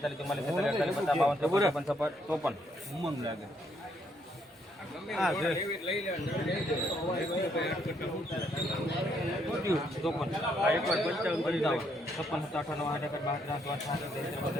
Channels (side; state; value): both; normal; correlation 0.72